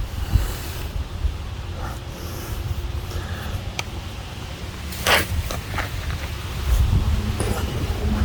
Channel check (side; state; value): both; identical; correlation 1.00